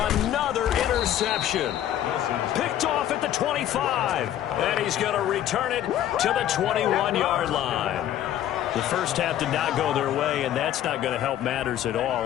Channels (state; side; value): quieter; right; 11.7 dB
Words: interception. Picked off at the 25. And he's going to return it to the 21-yard line. The first half did not go their way, and that's not going to help matters at